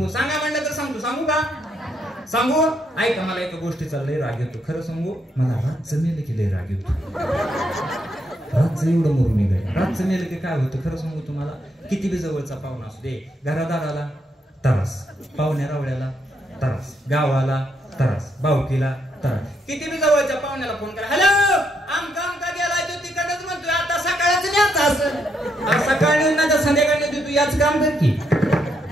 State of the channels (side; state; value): both; normal; correlation 0.76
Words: सांगा म्हणलं तर सांगू का सांगू ऐका मला एका गोष्टीचा लय राग येतो. खरं सांगू मला रातचं मेलं की लय राग येतो. रातचं एवढं मरून निघाय. रातचं मेलं की काय होतं खरं सांगू तुम्हाला किती बी जवळचा पाहुणा असू दे घरादाराला त्रास पाहुण्या रावळ्याला त्रास गावाला त्रास भावकीला त्रास. किती बी जवळच्या पाहुण्याला फोन करा हॅलो आमका गेला तो तिकडच म्हणतोय आता सकाळच न्यायचा असं सकाळी तू याच काम कर की.